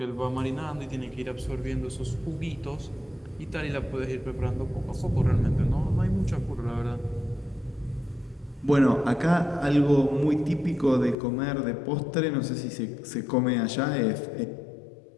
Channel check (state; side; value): drops out; right; at 11.2 s